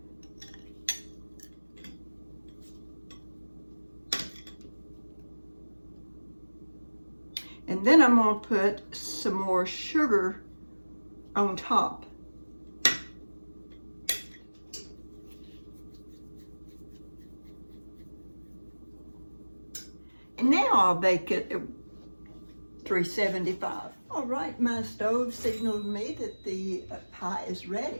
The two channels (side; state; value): both; inverted; correlation -1.00